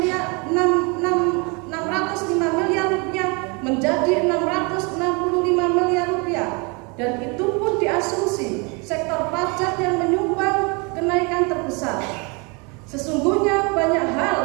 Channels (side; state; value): left; quieter; 30.8 dB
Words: rupiah menjadi 665 miliar rupiah, dan itu pun diasumsi sektor pajak yang menyumbang kenaikan terbesar. Sesungguhnya banyak